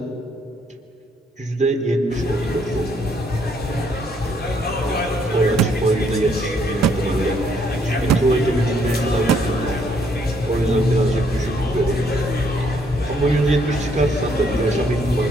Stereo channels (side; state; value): both; normal; correlation 0.69